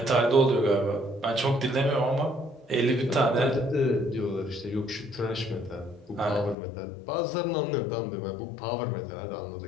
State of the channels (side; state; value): right; drops out; at 6.6 s